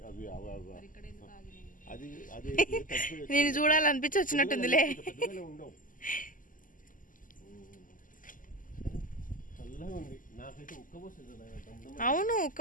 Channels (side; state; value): right; late; 0.39 ms